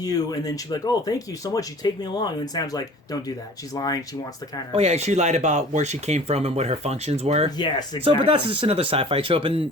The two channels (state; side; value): normal; both; correlation 0.45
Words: and then she'd be like, "Oh, thank you so much. You take me along." And then Sam's like, "Don't do that." She's lying. She wants to kind of. Oh yeah, she lied about where she came from and what her functions were. Yes, exactly. So, but that's just another sci-fi trope,